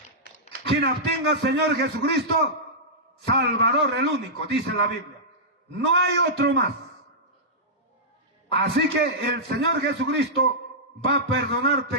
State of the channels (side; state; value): both; normal; correlation -0.12